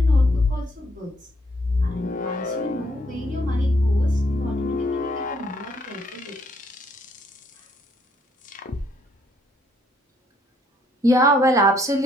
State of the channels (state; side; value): normal; both; correlation 0.69